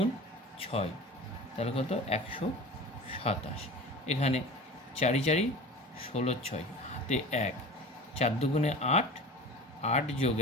6, তাহলে কত? 127। এখানে 4 4 16, 6 হাতে 1, 4 দুগুণে 8, 8 যোগ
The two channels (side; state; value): both; normal; correlation 0.36